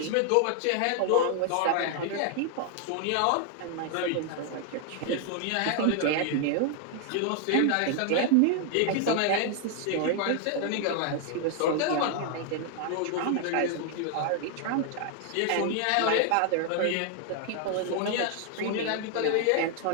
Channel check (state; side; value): different; both; correlation 0.00